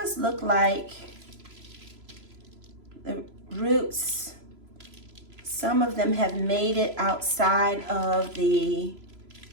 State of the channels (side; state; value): left; late; 3.0 ms